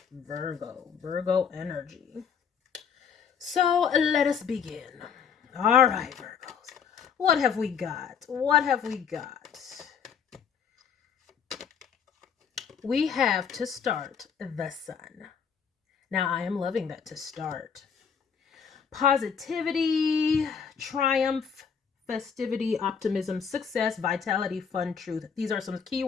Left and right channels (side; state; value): right; quieter; 6.9 dB